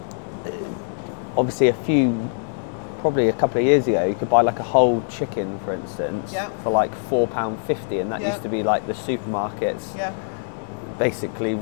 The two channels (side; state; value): right; silent; digital silence